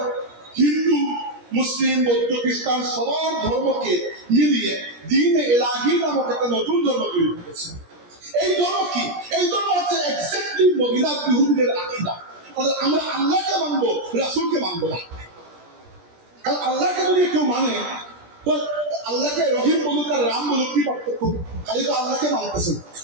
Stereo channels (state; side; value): late; left; 17 ms